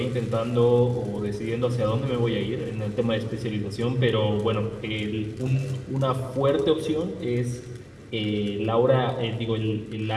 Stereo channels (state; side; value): identical; both; correlation 1.00